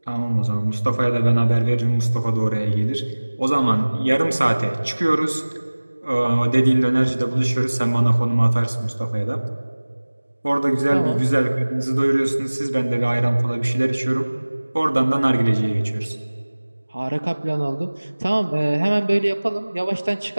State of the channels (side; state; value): both; inverted; correlation -1.00